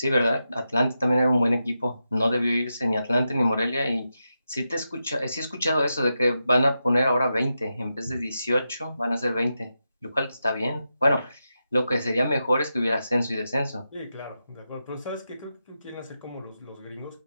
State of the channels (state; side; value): inverted; both; correlation -0.88